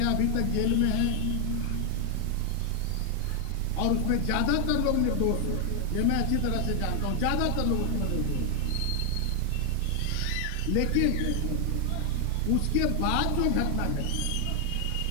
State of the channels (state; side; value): different; both; correlation 0.00